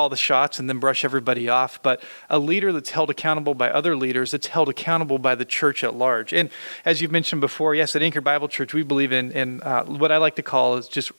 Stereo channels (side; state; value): both; inverted; correlation -1.00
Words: the shots and then brush everybody off, but a leader that's held accountable by other leaders, that's held accountable by the church at large. And as you've mentioned before, yes, at Anchored Bible Church, we believe in what I like to call is just